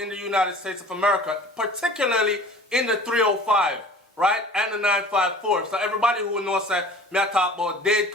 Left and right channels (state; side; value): normal; both; correlation 0.44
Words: the United States of America, particularly in the 305, right, and the 954. So everybody who knows that, me I talk about Dade